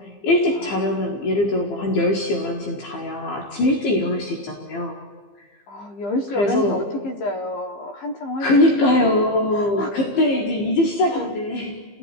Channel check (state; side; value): late; right; 15 ms